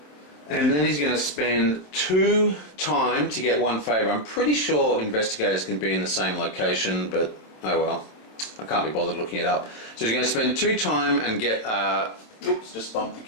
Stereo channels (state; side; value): late; right; 27 ms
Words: And then he's going to spend 2 time to get 1 favour. I'm pretty sure investigators can be in the same location, but oh well. I can't be bothered looking it up. So he's going to spend 2 time and get... oops, just bumped the